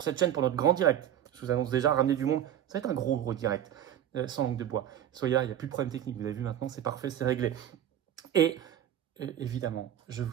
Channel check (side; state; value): left; quieter; 10.6 dB